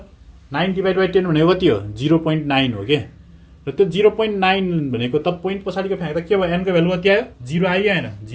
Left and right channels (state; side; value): identical; both; correlation 1.00